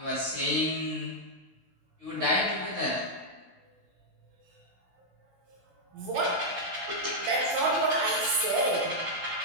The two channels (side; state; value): left; late; 16 ms